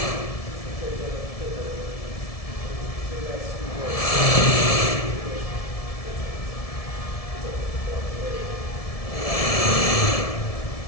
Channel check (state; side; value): late; right; 1.7 ms